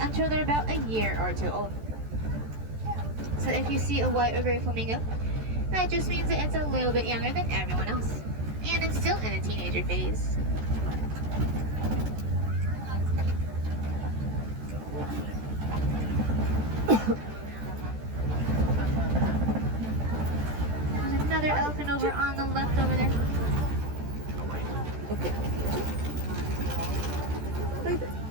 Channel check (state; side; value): late; left; 14 ms